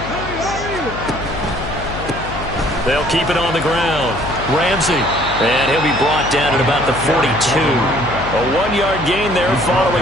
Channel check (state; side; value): noise; left; hum, 10 dB below the sound